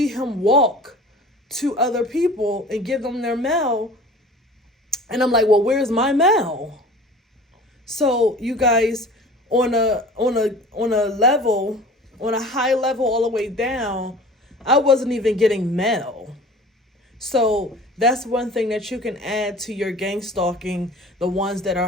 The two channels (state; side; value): normal; both; correlation 0.42